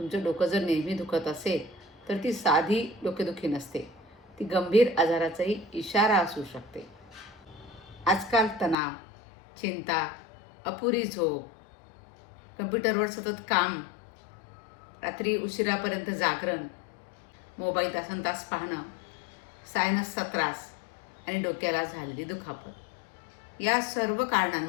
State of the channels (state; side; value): drops out; right; at 8.8 s